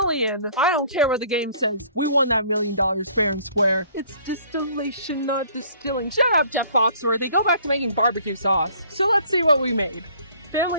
I don't care what the game says. We won that $1 million fair and square. It's distillation, not distilling. Shut up, Jeff Foxworthy. Go back to making barbecue sauce. So let's see what we made.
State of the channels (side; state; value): both; inverted; correlation -0.57